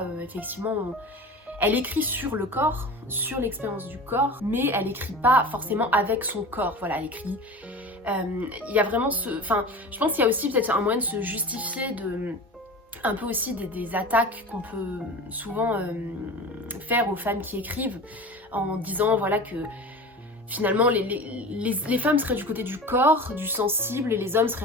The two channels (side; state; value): both; normal; correlation 0.34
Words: effectivement. Elle écrit sur le corps, sur l'expérience du corps, mais elle écrit pas forcément avec son corps. Voilà, elle écrit. Il y a vraiment je pense qu'il y a aussi peut-être un moyen de se justifier un peu aussi des attaques qu'on peut souvent faire aux femmes qui écrivent en disant voilà que finalement les femmes seraient du côté du corps, du sensible, et les hommes seraient